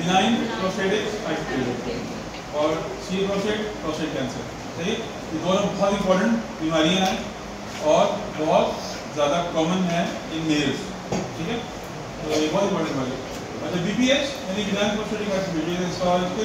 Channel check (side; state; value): both; identical; correlation 1.00